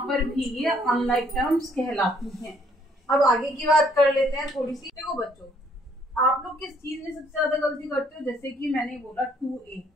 पर भी ये अनलाइक टर्म्स कहलाती हैं। अब आगे की बात कर लेते हैं थोड़ी सी। देखो बच्चों, आप लोग किस चीज में सबसे ज्यादा गलती करते हो? जैसे कि मैंने बोला 2A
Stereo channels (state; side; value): normal; both; correlation 0.65